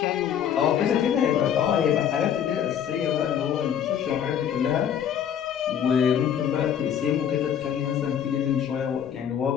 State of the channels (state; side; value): quieter; right; 9.0 dB